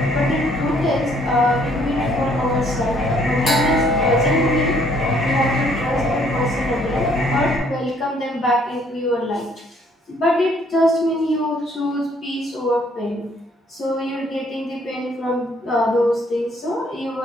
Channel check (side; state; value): both; normal; correlation 0.64